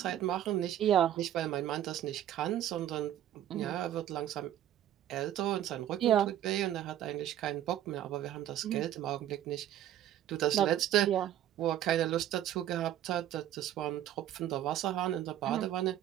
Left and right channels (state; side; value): quieter; left; 11.8 dB